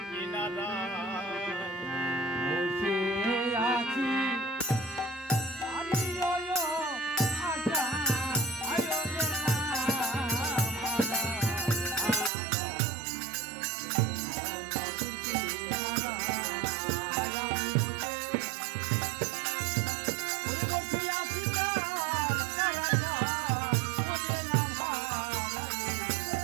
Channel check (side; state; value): left; drops out; at 12.3 s